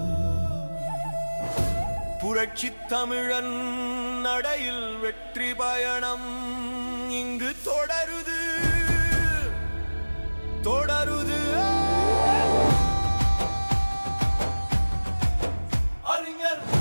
புரட்சி தமிழன் நடையில் வெற்றி பயணம் இங்கு தொடருது தொடருது. அறிஞர்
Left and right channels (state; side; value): inverted; both; correlation -1.00